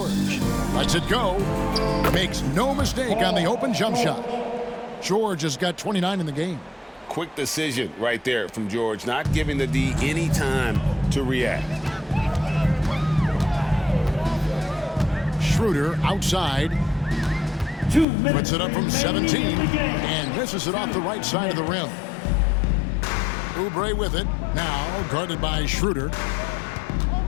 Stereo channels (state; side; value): drops out; right; at 18.1 s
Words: Lets it go. Makes no mistake on the open jump shot. George has got 29 in the game. Quick decision right there from George, not giving the D any time to react. Schroeder outside. Puts it up from 17 and misses it off the right side of the rim. Oubre with it. Now guarded by Schroeder.